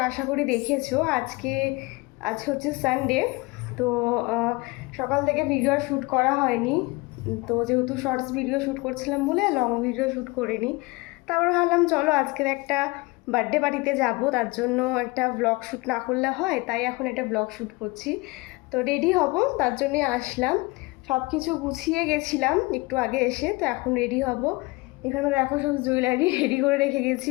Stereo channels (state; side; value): quieter; right; 24.2 dB